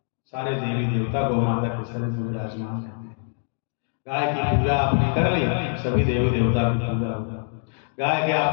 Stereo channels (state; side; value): silent; right; digital silence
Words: सारे देवी देवता गौ माता के शरीर में विराजमान रहते हैं। गाय की पूजा आपने कर ली, सभी देवी देवता की पूजा होगा। गाय के